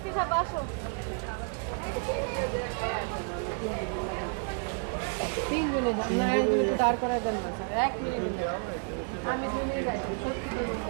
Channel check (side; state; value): left; quieter; 39.7 dB